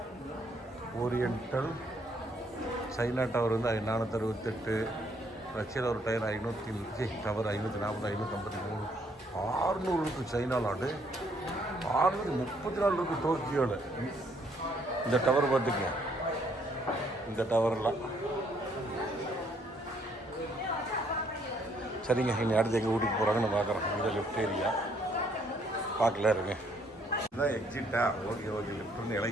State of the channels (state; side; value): normal; both; correlation 0.68